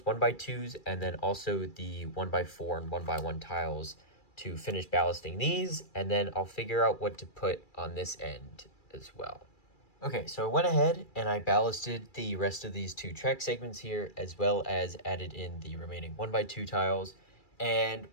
1x2s, and then also the 1x4 and 1x1 tiles to finish ballasting these, and then I'll figure out what to put on this end as well. Okay, so I went ahead and I ballasted the rest of these two track segments here, as well as added in the remaining 1x2 tiles. And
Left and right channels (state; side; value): late; right; 2.3 ms